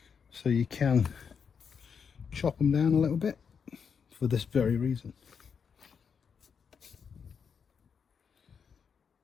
so you can chop them down a little bit for this very reason.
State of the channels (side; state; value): right; quieter; 6.5 dB